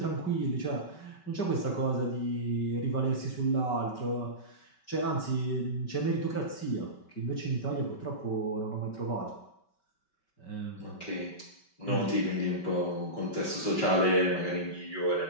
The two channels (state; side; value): late; right; 5.2 ms